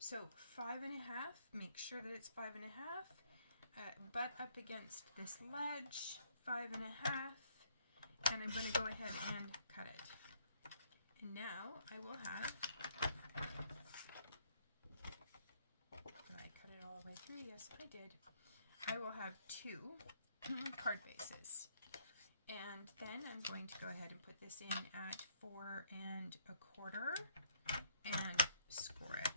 5.5, make sure that it's 5.5. Butt up against this ledge, 5.5. And I'm going to go ahead and cut it. And now I will have, did I cut it all the way through? Yes, I did. I will have 2 card bases. And then I'm going to go ahead and put this in at 4 1/4 and score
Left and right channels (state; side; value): inverted; both; correlation -0.66